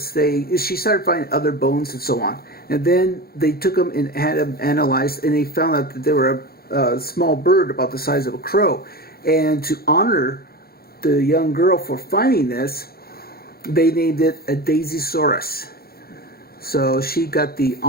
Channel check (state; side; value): late; right; 0.44 ms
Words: she started finding other bones and so on. And then they took them and had them analyzed, and they found out that they were a small bird about the size of a crow. And to honor the young girl for finding this, they named it a Daisysaurus. So she got the